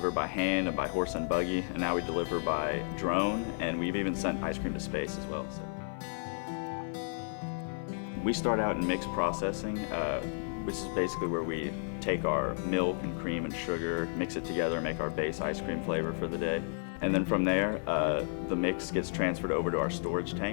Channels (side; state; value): right; silent; 56 dB below the other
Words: by hand and by horse and buggy, and now we deliver by drone, and we've even sent ice cream to space as well. So. We start out in mixed processing, which is basically where we take our milk and cream and sugar, mix it together, and make our base ice cream flavor for the day. And then from there, the mix gets transferred over to our storage